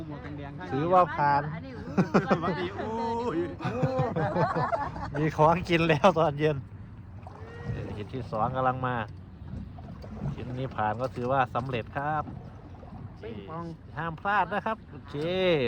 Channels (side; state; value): both; identical; correlation 1.00